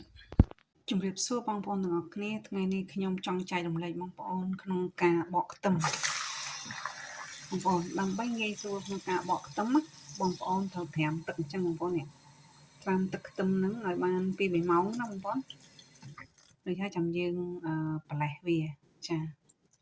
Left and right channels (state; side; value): identical; both; correlation 1.00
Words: ជំរាបសួរបងប្អូនទាំងអស់គ្នាថ្ងៃនេះខ្ញុំចង់ចែករំលែកបងប្អូនក្នុងការបកខ្ទឹមបងប្អូនដើម្បីងាយស្រួលក្នុងការបកខ្ទឹមបងប្អូនត្រូវត្រាំទឹកអញ្ចឹងបងប្អូននេះត្រាំទឹកខ្ទឹមហ្នឹងឲ្យបាន2-3ម៉ោងណាបងប្អូនដូចហើយចាំយើងប្រឡេះវាចាឥ